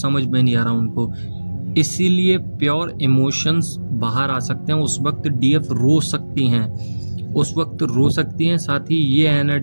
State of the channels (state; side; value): inverted; both; correlation -1.00